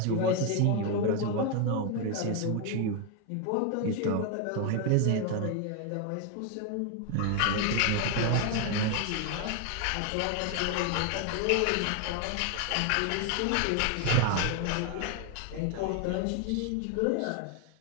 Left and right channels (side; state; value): both; different; correlation 0.01